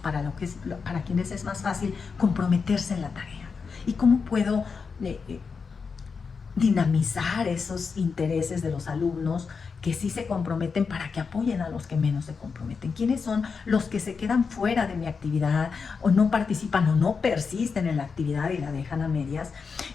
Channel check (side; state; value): right; quieter; 5.3 dB